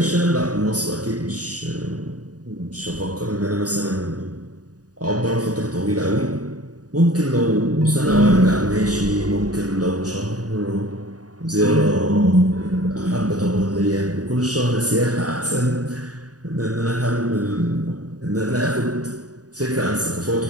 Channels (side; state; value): left; late; 0.68 ms